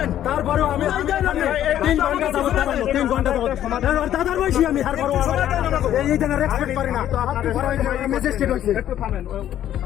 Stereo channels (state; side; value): quieter; right; 11.5 dB